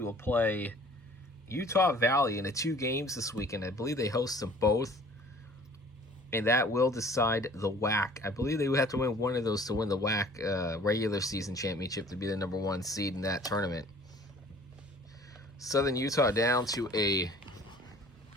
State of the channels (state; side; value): normal; both; correlation 0.50